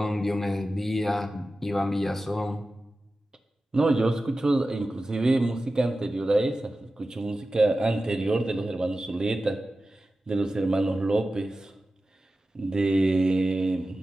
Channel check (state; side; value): normal; both; correlation 0.94